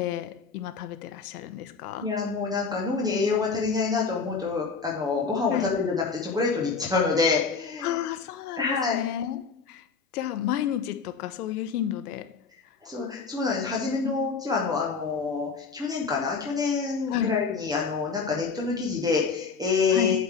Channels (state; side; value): quieter; right; 5.1 dB